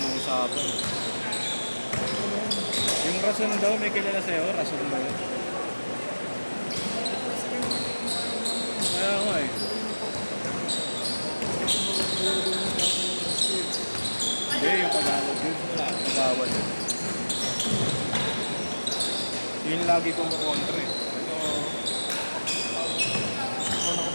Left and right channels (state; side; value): inverted; both; correlation -1.00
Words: ng usapan. Yung rason daw, may kilala sa'yo? Rason ba yun? Kaya nga eh. Hindi, yung Tagalog yun. Nagawal yun. Yun lagi kumukontra eh. Ako